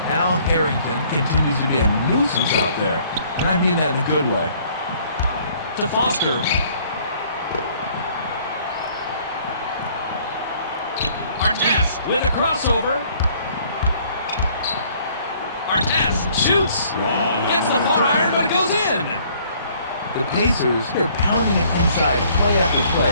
Al Harrington continues to be a nuisance out there, and I mean that in a good way. To Foster. Artest with a crossover. Artest shoots. Gets the far iron, but it goes in. The Pacers, they're pounding it inside play after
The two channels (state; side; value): inverted; both; correlation -0.59